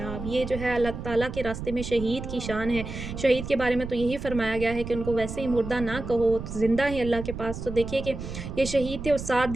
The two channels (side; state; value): right; noise; rumble, 8 dB below the sound